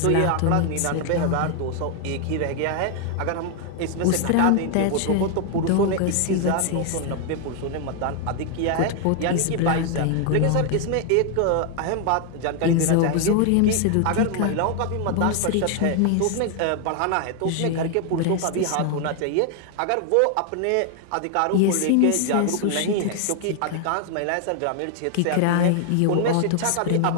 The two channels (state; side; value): different; both; correlation 0.00